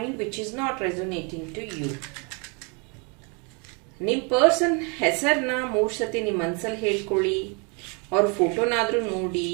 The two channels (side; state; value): left; quieter; 34.0 dB